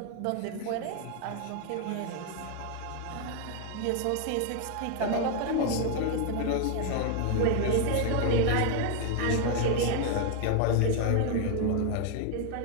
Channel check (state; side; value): different; both; correlation 0.00